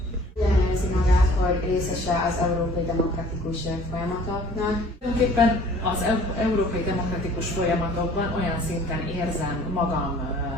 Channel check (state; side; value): normal; both; correlation 0.52